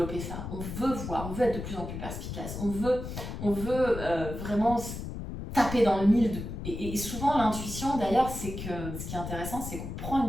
ça, on veut voir, on veut être de plus en plus perspicace, on veut vraiment taper dans le mille. Et souvent, l'intuition, d'ailleurs, c'est que ce qui est intéressant, c'est qu'on prend une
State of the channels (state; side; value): noise; left; rumble, 7 dB below the sound